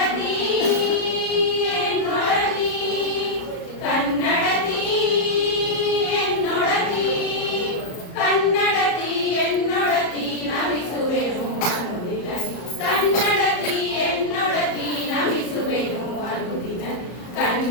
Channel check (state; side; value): late; right; 34 ms